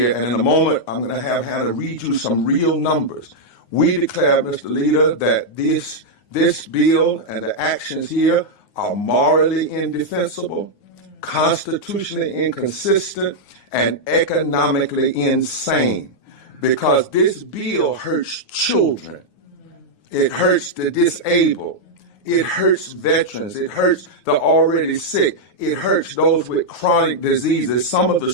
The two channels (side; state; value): right; late; 9.5 ms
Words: And in a moment, I'm going to have Hannah read you some real numbers. We declare, Mr. Leader, that this bill and the actions here are morally indefensible, constitutionally inconsistent, and economically insane, because this bill hurts children. It hurts the disabled. It hurts veterans. It hurts the already sick. It hurts those with chronic diseases, some of the